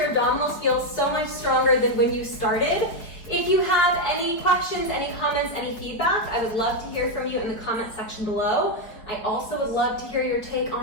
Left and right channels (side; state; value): right; late; 4.7 ms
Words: abdominals feel so much stronger than when you started. If you have any questions, any comments, any feedback, I would love to hear from you in the comment section below. I also would love to hear your take